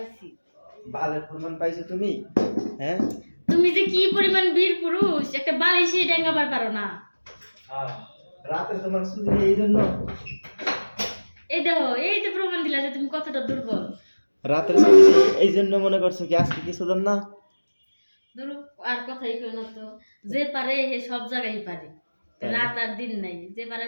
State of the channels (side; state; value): both; inverted; correlation -1.00